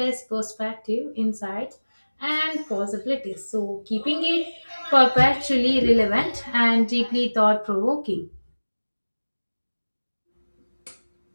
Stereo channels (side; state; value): both; inverted; correlation -1.00